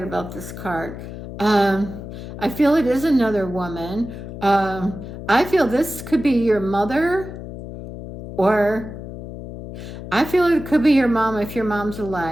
about this card. I feel it is another woman. I feel this could be your mother, or I feel it could be your mom if your mom's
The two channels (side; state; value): left; noise; hum, 11 dB below the sound